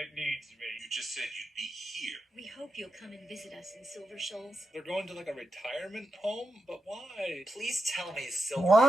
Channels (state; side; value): normal; both; correlation 0.87